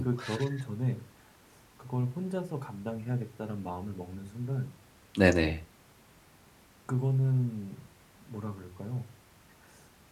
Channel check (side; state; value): both; identical; correlation 1.00